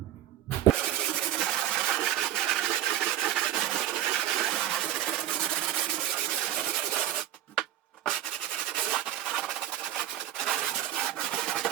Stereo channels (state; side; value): quieter; left; 12.3 dB